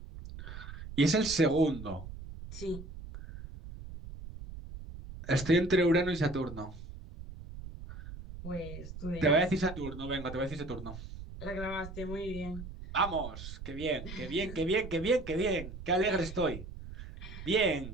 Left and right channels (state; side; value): noise; right; rumble, 12 dB below the sound